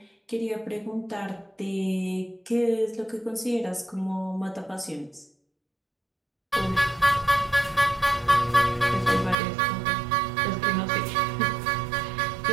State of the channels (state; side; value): drops out; left; at 9.3 s